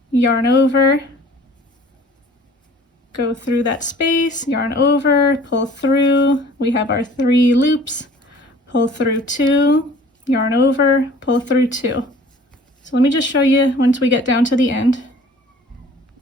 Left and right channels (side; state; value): both; normal; correlation 0.50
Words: Yarn over, go through that space, yarn over, pull through. We have our 3 loops, pull through 2, yarn over, pull through 2. So let me just show you once we get down to the end.